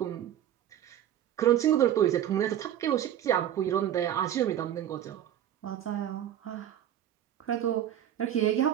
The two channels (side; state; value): left; quieter; 10.9 dB